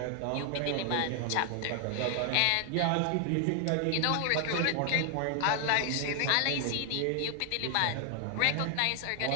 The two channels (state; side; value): different; both; correlation 0.00